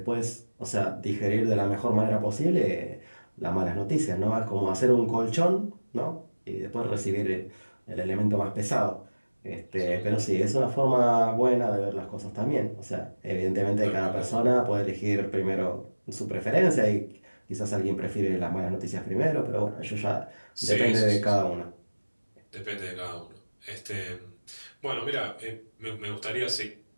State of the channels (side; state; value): both; inverted; correlation -1.00